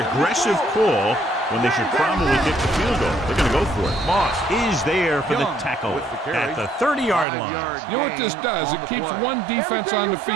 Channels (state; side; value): drops out; left; at 7.2 s